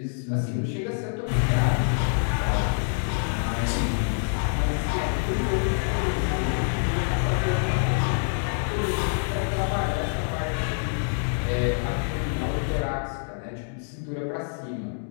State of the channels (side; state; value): right; silent; digital silence